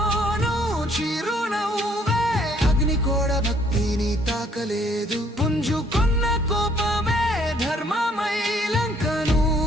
చిరునవ్వే, అగ్ని కూడా భక్తిని తాకలేదు. పుంజుకున్న కోపమే ధర్మమై లంకను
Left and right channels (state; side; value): normal; both; correlation 0.63